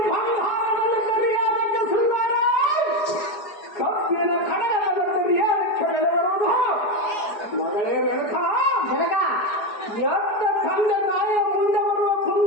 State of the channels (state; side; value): late; right; 4.8 ms